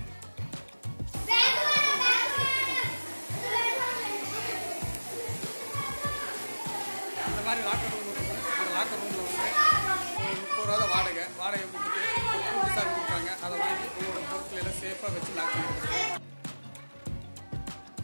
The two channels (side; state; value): both; inverted; correlation -1.00